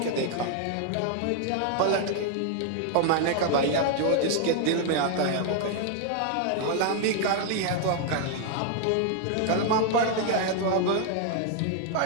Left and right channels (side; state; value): both; different; correlation 0.00